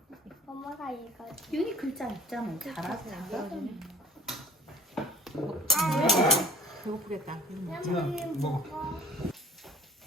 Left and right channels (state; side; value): normal; both; correlation 0.47